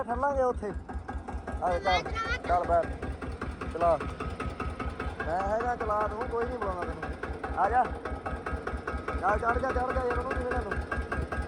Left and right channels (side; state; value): both; identical; correlation 1.00